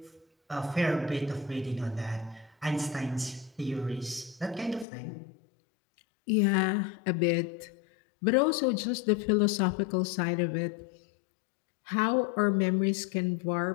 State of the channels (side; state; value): right; drops out; at 4.9 s